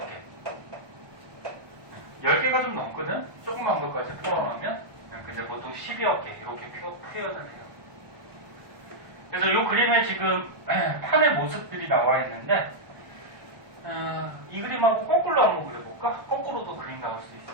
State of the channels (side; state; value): left; late; 1.1 ms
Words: 개. 10개가 좀 넘거든? 조그만 것까지 포함하면 근데 보통 10여 개 이렇게 표현을 해요. 그래서 이 그림에 지금 판의 모습들이 나와 있는데 이 그림하고 거꾸로 한번 그려볼까? 거꾸로도 그림 나올 수